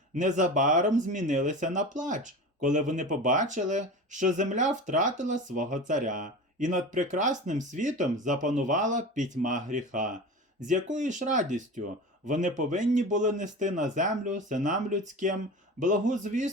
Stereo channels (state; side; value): normal; both; correlation 0.32